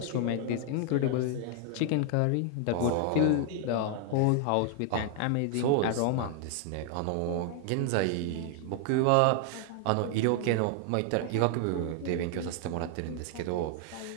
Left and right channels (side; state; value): both; different; correlation 0.00